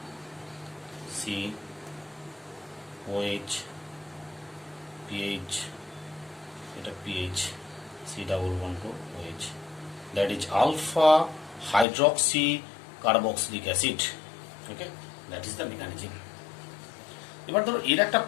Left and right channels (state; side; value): drops out; right; at 11.9 s